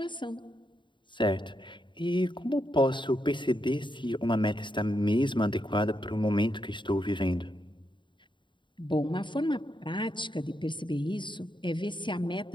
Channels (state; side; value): late; right; 0.23 ms